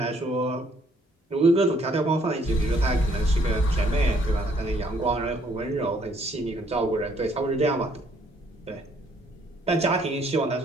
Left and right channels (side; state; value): both; normal; correlation 0.65